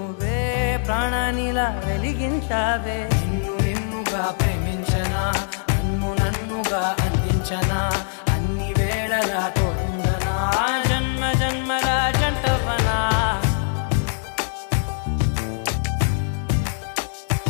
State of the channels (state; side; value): silent; right; digital silence